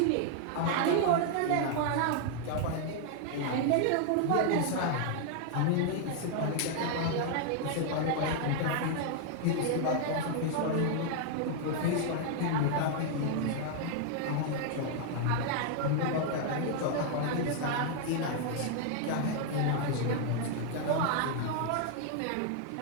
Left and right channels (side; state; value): both; different; correlation 0.00